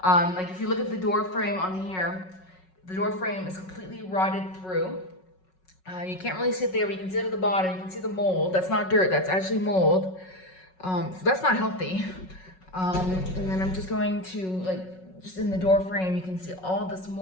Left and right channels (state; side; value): late; right; 5.4 ms